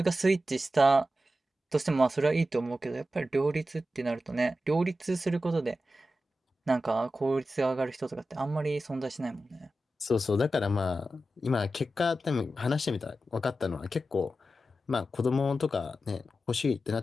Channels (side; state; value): both; normal; correlation 0.92